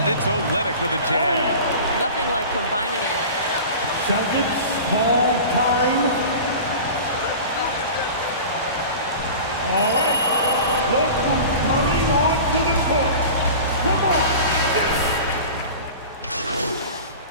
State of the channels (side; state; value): both; inverted; correlation -0.36